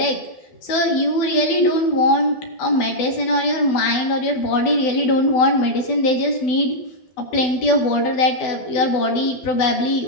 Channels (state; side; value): late; right; 12 ms